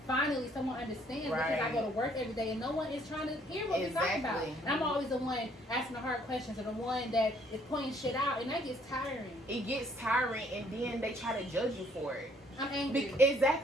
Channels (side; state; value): both; normal; correlation 0.63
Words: finally someone understands, because I go to work every day and no one is trying to hear what we're talking about. And I'm always the one asking the hard questions, or the one that is pointing shit out, and that gets tiring. It gets tiring, and then they try to judge you for it. I'm angry.